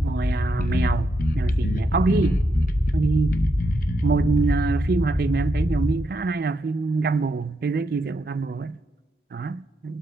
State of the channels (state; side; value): normal; both; correlation 0.81